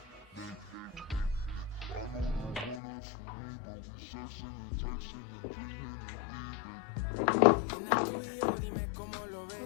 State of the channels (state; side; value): drops out; right; at 2.8 s